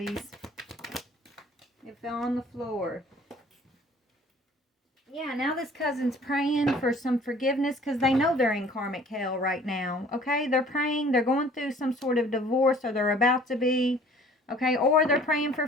It fell on the floor. Yeah, now this cousin's praying for some forgiveness because they know they're in karmic hell right now. Okay, they're praying. They're going through some sort of divorce, or they're about to be. Okay, or they're praying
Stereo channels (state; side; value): normal; both; correlation 0.53